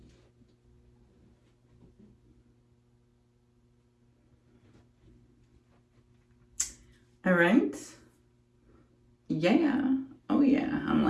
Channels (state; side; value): identical; both; correlation 1.00